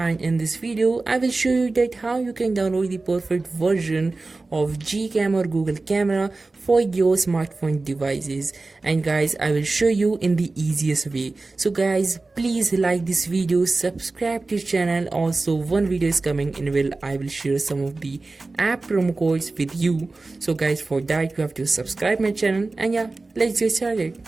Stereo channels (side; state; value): left; quieter; 3.4 dB